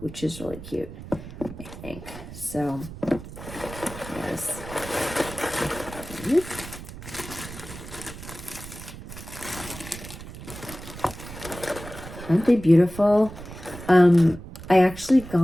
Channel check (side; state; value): right; noise; rumble, 13 dB below the sound